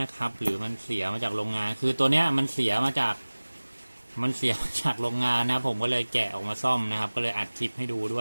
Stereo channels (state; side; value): inverted; both; correlation -1.00